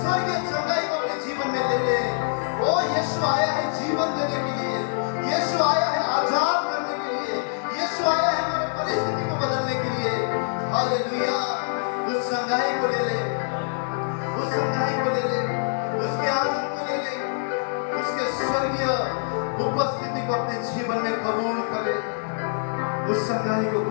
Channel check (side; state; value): right; silent; 62 dB below the other